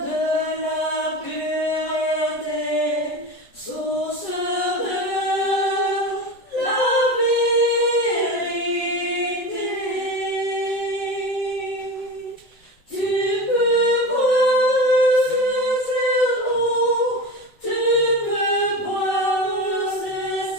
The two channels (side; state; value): right; late; 7.9 ms